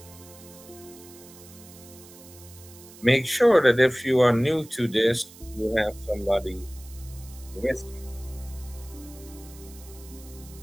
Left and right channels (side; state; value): right; noise; hiss, 20 dB below the sound